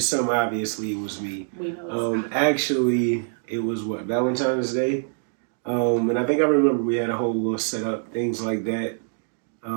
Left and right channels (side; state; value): left; silent; digital silence